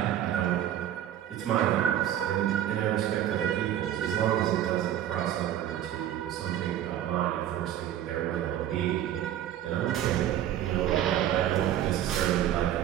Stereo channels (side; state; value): left; quieter; 11.6 dB